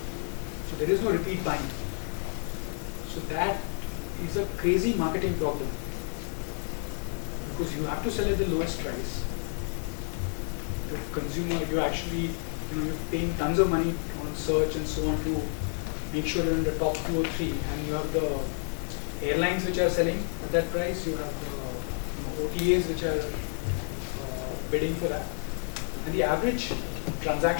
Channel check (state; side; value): silent; right; 55 dB below the other